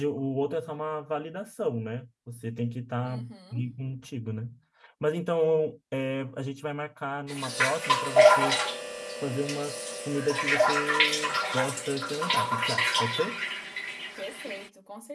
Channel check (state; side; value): identical; both; correlation 1.00